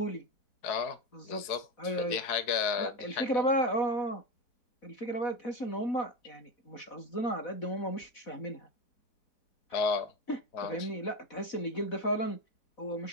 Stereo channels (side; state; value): right; late; 4.6 ms